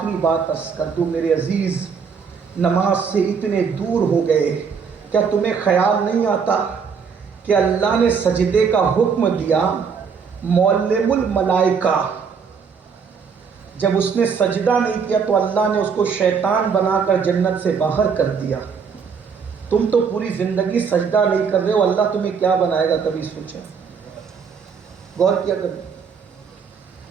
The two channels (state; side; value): quieter; left; 6.1 dB